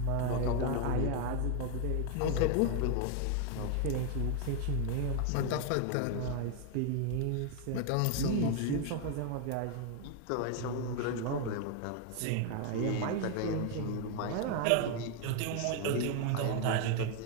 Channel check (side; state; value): both; different; correlation 0.01